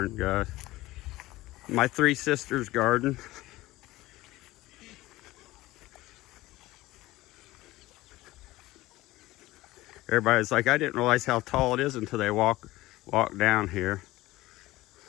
guys. My three sisters' garden. Everybody's like, I didn't realize how tall it is until they walk down here.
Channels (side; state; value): right; quieter; 18.1 dB